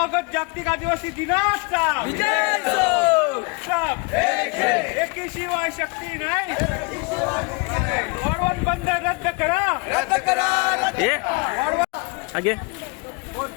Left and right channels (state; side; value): quieter; right; 30.5 dB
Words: जागतिक आदिवासी दिनाचा एकी शिवाय शक्ती नाही. वाढवण बंद रद्द करा. आगे